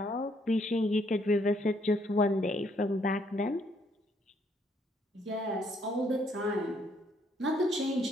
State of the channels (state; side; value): normal; both; correlation 0.69